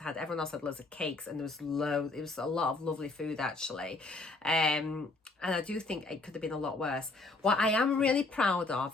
had. Everyone else had loads of cakes, and there was loads. It was a lot of lovely food, actually. And I do think it could have been a lot worse. What I am really proud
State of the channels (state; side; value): quieter; right; 3.3 dB